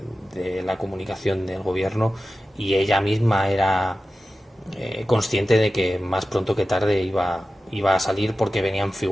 la comunicación del gobierno y ella misma era consciente de que más pronto que tarde iba a salir porque venían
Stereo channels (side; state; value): both; normal; correlation 0.94